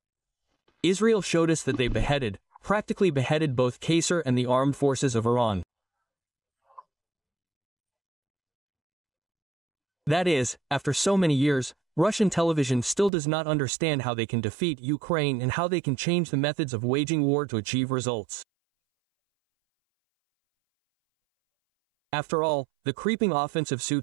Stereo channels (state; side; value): drops out; left; at 13.1 s